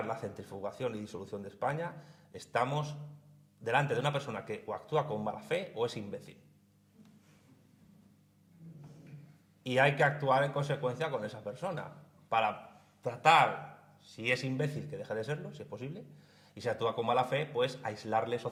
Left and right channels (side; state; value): both; identical; correlation 1.00